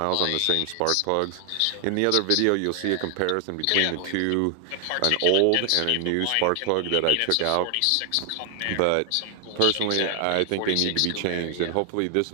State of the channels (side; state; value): both; different; correlation 0.00